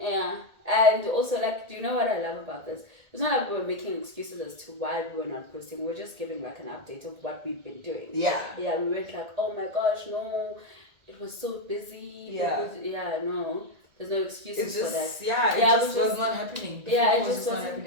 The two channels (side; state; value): left; late; 1.8 ms